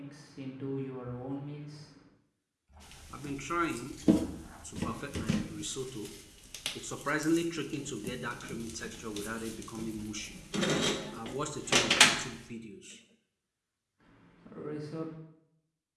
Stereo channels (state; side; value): identical; both; correlation 1.00